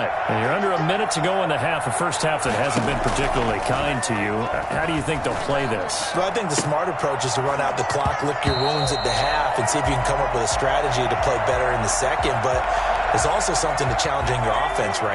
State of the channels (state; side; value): identical; both; correlation 1.00